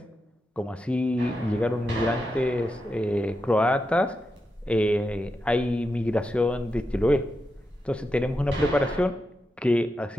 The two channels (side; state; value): both; normal; correlation 0.87